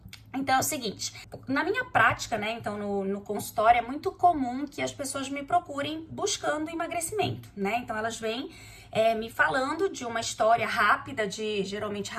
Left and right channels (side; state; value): both; identical; correlation 1.00